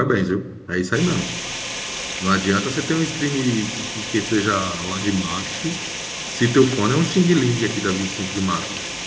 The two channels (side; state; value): both; identical; correlation 1.00